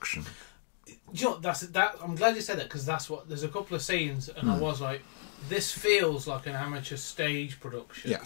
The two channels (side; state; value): right; silent; digital silence